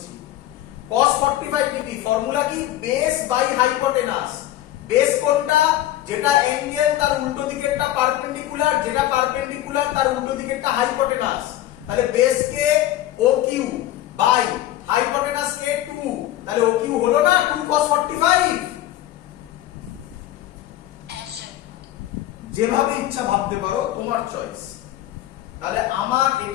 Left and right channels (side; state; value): right; quieter; 13.8 dB